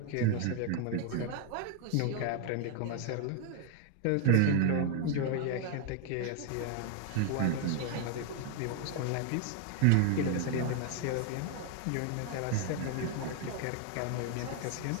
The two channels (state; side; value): different; both; correlation 0.00